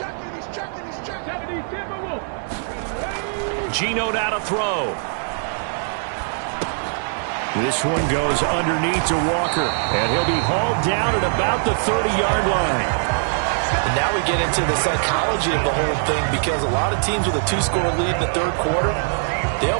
Gino now to throw. This one goes underneath to Walker, and he'll be hauled down at about the 30-yard line. And now we get into the psychology of the whole thing, because a lot of teams with a 2-score lead in the third quarter, they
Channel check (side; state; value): left; silent; 64 dB below the other